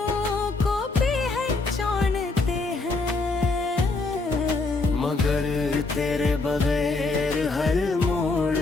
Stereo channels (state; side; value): quieter; right; 3.6 dB